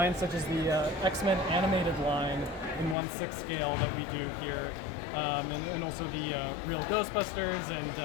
such as the X-Men animated line in 1/6 scale that we do here, and also the real Ghostbusters and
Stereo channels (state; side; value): drops out; right; at 3.0 s